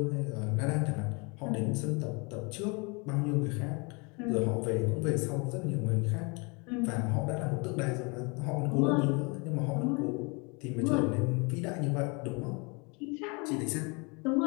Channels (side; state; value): right; quieter; 30.6 dB